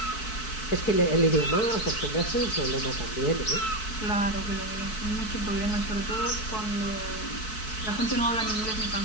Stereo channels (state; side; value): late; right; 4.6 ms